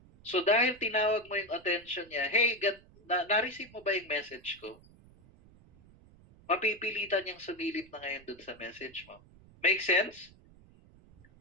So dahil tinawag mo yung attention niya, hey, na-receive mo ba yung message ko? Mapipilitan niyang sumilip na ngayon dun sa message mo. Make sense?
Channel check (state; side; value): noise; right; rumble, 25 dB below the sound